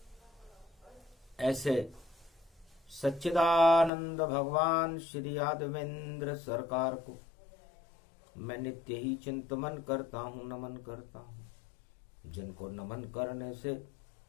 ऐसे सच्चिदानंद भगवान श्री यादवेंद्र सरकार को मैं नित्य ही चिंतन करता हूँ, नमन करता हूँ। जिनको नमन करने से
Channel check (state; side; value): drops out; right; at 3.9 s